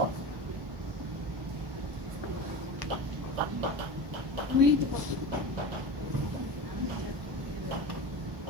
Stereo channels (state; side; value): late; left; 1.1 ms